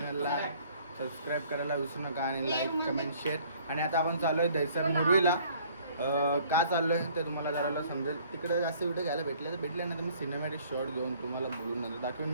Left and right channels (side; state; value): both; inverted; correlation -0.57